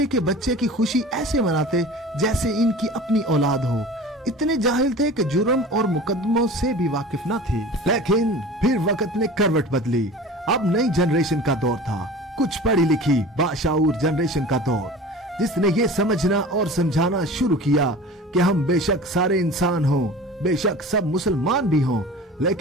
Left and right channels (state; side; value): normal; both; correlation 0.38